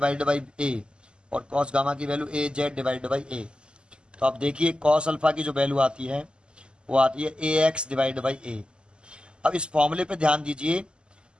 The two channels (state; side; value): late; left; 0.050 ms